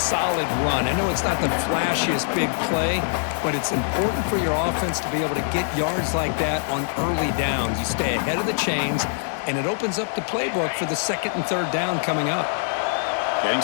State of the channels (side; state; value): right; silent; digital silence